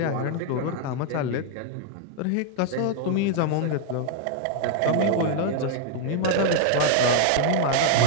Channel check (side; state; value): both; different; correlation 0.00